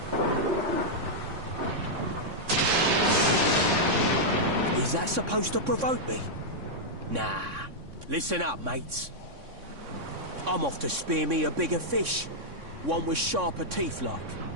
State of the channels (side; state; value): left; late; 3.6 ms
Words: Is that supposed to provoke me? Nah. Listen up, mates. I'm off to spear me a bigger fish. One with sharper teeth like.